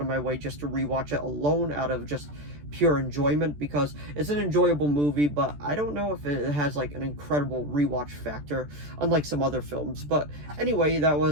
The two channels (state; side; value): late; left; 14 ms